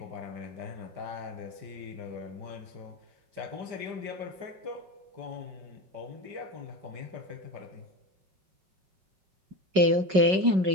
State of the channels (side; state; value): left; late; 5.3 ms